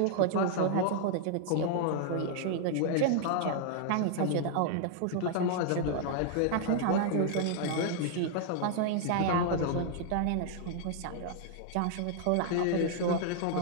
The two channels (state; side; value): different; both; correlation -0.01